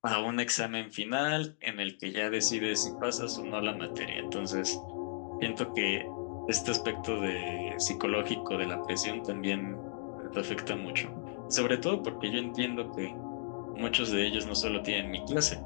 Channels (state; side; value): silent; right; digital silence